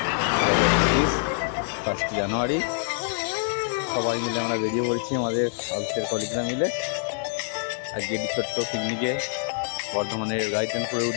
1 জানুয়ারি। সবাই মিলে আমরা বেরিয়ে পড়েছি আমাদের অফিসের কলিগরা মিলে আজকে একটি ছোট্ট পিকনিকে বর্ধমানের গাইতেনপুরের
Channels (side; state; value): right; silent; digital silence